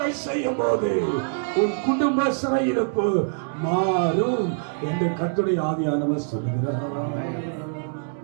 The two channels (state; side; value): silent; left; digital silence